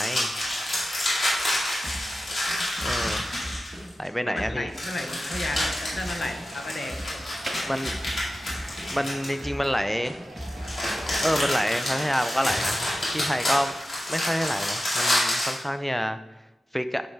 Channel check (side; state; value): both; normal; correlation 0.93